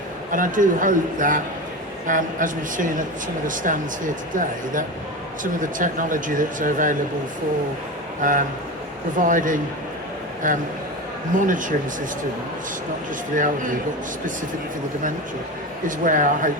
And I do hope that, as we've seen at some of the stands here today, that some of the technology that's available for providing monitoring systems, not just for the elderly, but specifically for the dementia, is where I hope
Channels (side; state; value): both; normal; correlation 0.24